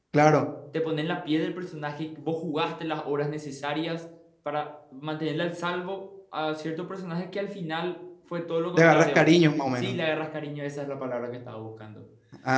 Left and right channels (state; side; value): identical; both; correlation 1.00